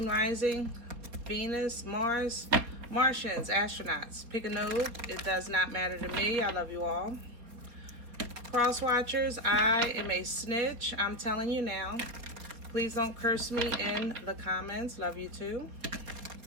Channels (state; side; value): late; left; 4.3 ms